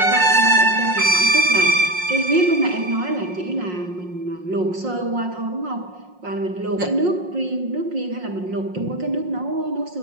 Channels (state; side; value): late; left; 5.5 ms